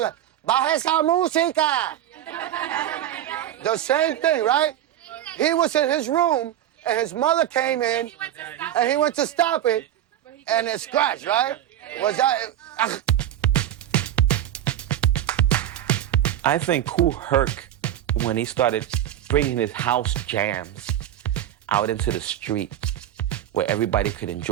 like, baja esa música? The same thing, right? He was in his room, and his mother came in, and he went to stop it, and it scratched, right? Was that... I think Kool Herc, when he started bringing his house jams out into the street, where everybody could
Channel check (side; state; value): left; quieter; 11.7 dB